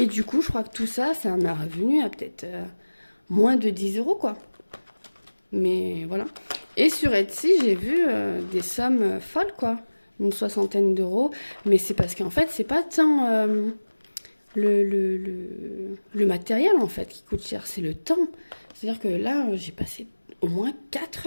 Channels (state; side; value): inverted; both; correlation -1.00